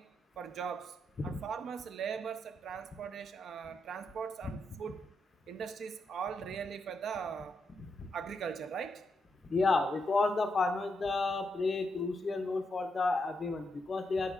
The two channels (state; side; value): normal; both; correlation 0.82